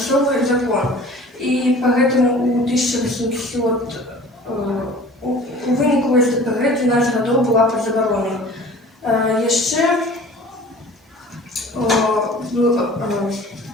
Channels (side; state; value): both; normal; correlation 0.45